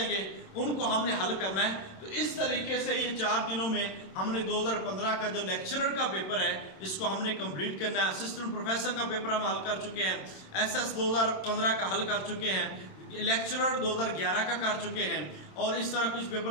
گے، ان کو ہم نے حل کرنا ہے۔ تو اس طریقے سے یہ 4 دنوں میں ہم نے 2015 کا جو لیکچرر کا پیپر ہے اس کو ہم نے کمپلیٹ کرنا ہے۔ اسسٹنٹ پروفیسر کا پیپر ہم حل کر چکے ہیں، ایس ایس 2015 کا حل کر چکے ہیں، لیکچرر 2011 کا کر چکے ہیں، اور اس طرح کچھ پیپر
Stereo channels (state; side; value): late; right; 27 ms